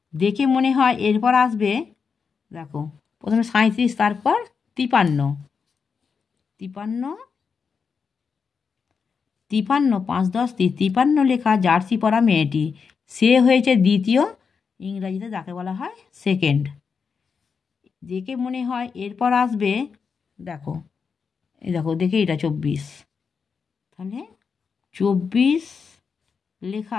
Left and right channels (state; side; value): quieter; right; 5.7 dB